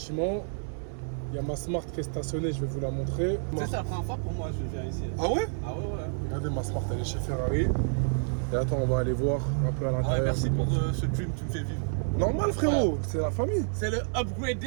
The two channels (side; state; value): left; silent; 59 dB below the other